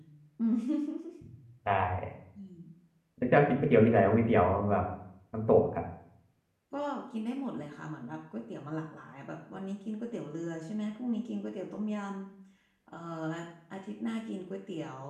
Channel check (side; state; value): both; identical; correlation 1.00